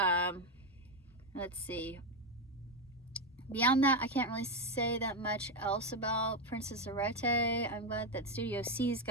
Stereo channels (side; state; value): both; normal; correlation 0.08